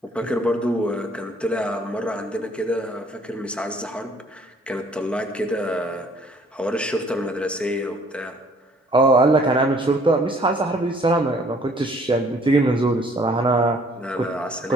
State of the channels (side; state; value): both; normal; correlation 0.58